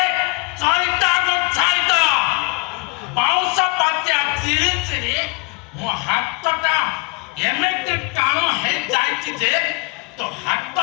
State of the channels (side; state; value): right; quieter; 29.5 dB